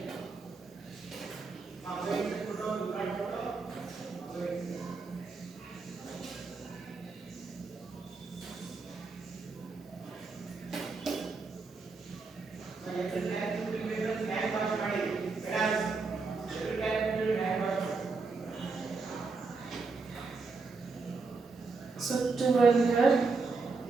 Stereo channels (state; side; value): quieter; left; 4.2 dB